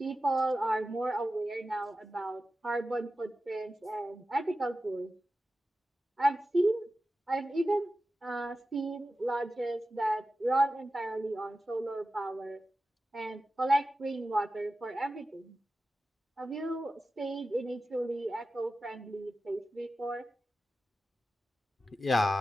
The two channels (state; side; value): normal; both; correlation 0.93